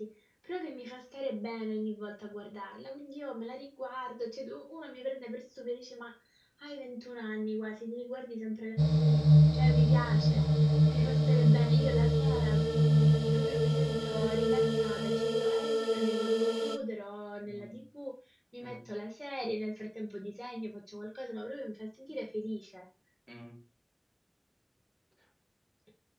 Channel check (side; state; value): both; identical; correlation 1.00